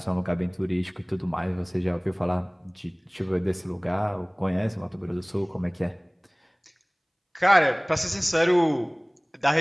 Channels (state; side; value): identical; both; correlation 1.00